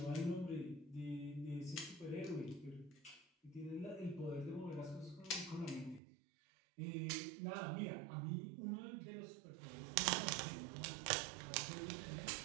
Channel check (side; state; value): left; drops out; at 6.0 s